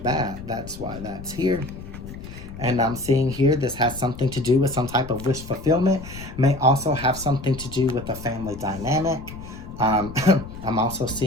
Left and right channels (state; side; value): noise; left; rumble, 13 dB below the sound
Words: bat, that's why that's here. And I'm seeing here, this has something to do with some type of wish fulfillment. May also have something to do with a family dynamic. I'm also